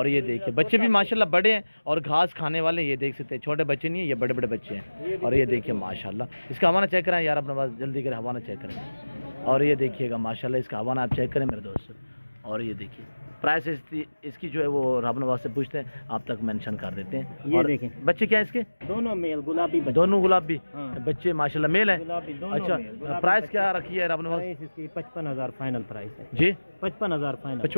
ये देखिए बच्चे भी माशाल्लाह बड़े हैं और घास खाने वाले, ये देख सकते हैं। छोटे बच्चे नहीं है, ये बड़े बड़े बच्चे हैं। और ये देखिए माशाल्लाह, इसका हवाना चेक करें यार अपने पास, जल्दी करें हवाना चेक करें। और ये देखिएगा माशाल्लाह, इसका हवाना आप चेक करें मेरे दोस्तों। और ये देखिए प्राइस इसकी जो है वो रब नवाज से पूछते हैं, आप तक मेंशन कर देते हैं। ये देखें बच्चे क्या है इसके? दोनों मेल गुलाबी बच्चे। दोनों गुलाबी हाँ। बच्चे माशाल्लाह मेल है। गुलाबी दोनों अच्छा, मेल, प्राइस क्या रखी है रब नवाज? प्राइस इसकी 55,000 फाइनल प्राइस है जी 55,000 फाइनल।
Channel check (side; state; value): both; inverted; correlation -1.00